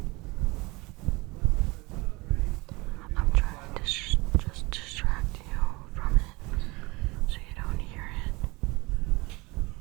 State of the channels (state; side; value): quieter; left; 24.1 dB